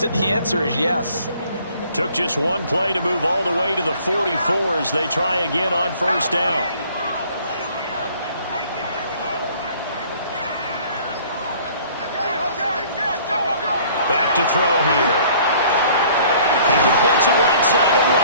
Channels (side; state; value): both; inverted; correlation -0.55